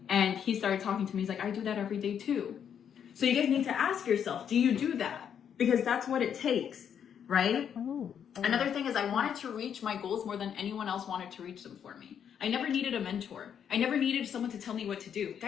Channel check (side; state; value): right; quieter; 8.3 dB